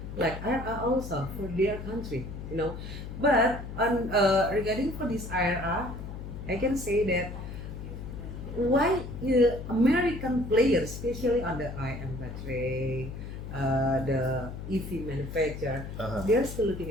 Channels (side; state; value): left; noise; hum, 9 dB below the sound